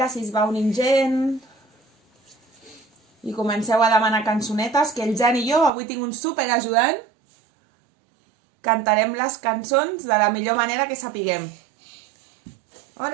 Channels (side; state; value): left; drops out; at 5.7 s